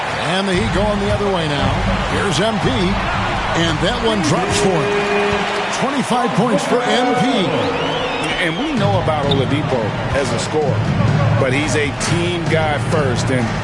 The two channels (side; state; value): both; identical; correlation 1.00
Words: And the Heat going the other way now. Here's MP. And that one drops for him. 25 points for MP. And we know about Oladipo as a scorer. But he's a team guy first and